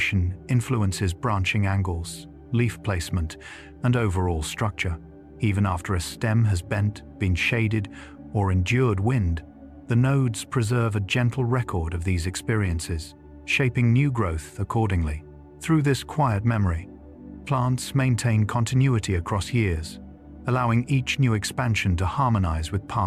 influences branching angles, leaf placement, and overall structure. Even after a stem has bent, been shaded, or endured wind, the nodes preserve a gentle record of these experiences, shaping new growth accordingly. Through this quiet memory, plants maintain continuity across years, allowing each new expansion to harmonize with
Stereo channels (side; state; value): both; identical; correlation 1.00